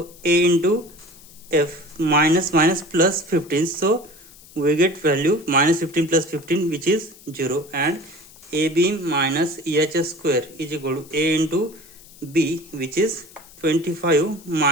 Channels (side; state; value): left; noise; hiss, 22 dB below the sound